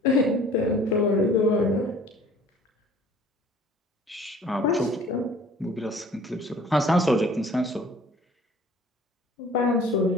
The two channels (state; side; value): normal; both; correlation 0.50